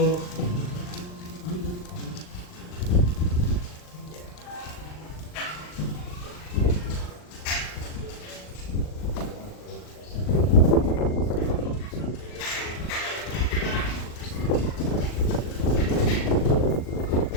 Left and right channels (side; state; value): right; late; 39 ms